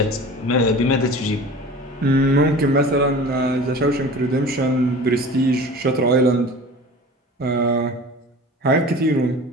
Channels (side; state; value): both; normal; correlation 0.39